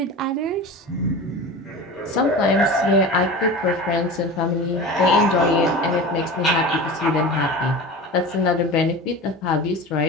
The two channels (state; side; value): normal; both; correlation 0.32